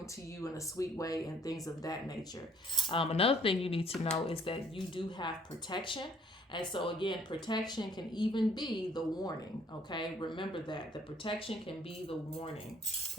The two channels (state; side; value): normal; both; correlation 0.60